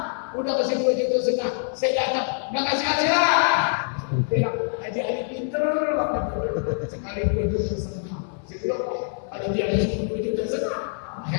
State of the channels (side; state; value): right; silent; 62 dB below the other